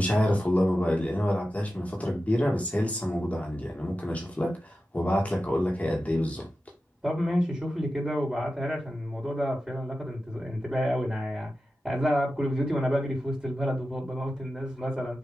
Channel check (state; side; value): normal; both; correlation 0.92